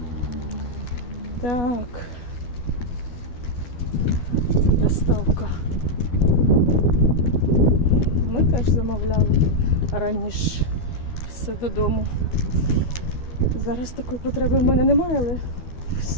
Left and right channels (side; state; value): right; late; 12 ms